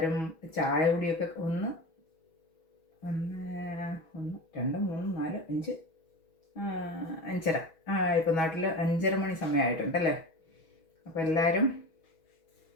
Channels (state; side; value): late; right; 6.2 ms